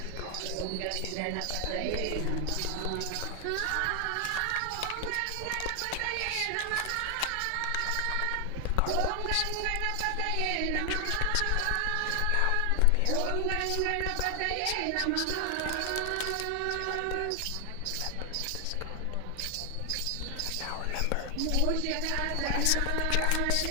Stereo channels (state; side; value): different; both; correlation 0.00